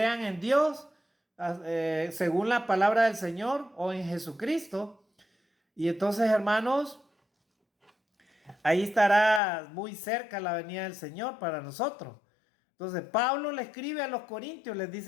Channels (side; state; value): right; drops out; at 9.4 s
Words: en Dios, según la palabra del Señor, o en Jesucristo. Y entonces, hermanos, ahí estará muy cerca la venida del Señor para nosotros. Entonces, Pablo le escribe a los corintios, les